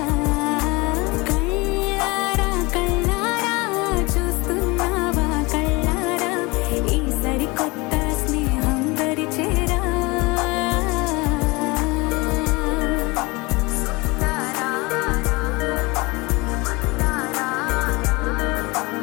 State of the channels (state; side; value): quieter; right; 24.8 dB